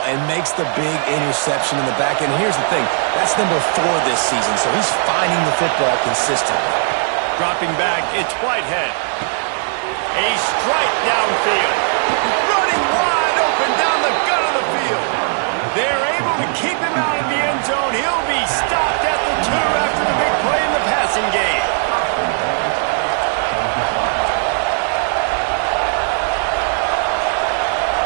and makes the big interception in the back end. Here's the thing. That's number 4 this season, so he's finding the football consistently. Dropping back, it's Whitehead. A strike downfield. Running wide open down the gut of the field. They're able to keep him out of the end zone. He'll be stopped at the 2 after the big play in the passing game.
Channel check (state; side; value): silent; left; 59 dB below the other